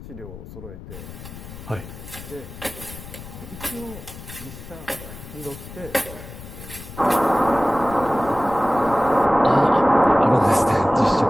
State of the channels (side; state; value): left; noise; rumble, 14 dB below the sound